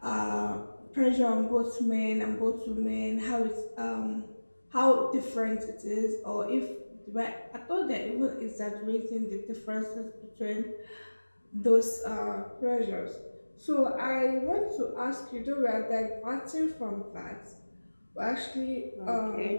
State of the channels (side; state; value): both; inverted; correlation -1.00